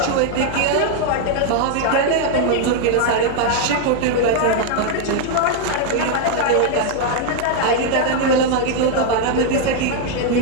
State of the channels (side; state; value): both; different; correlation 0.00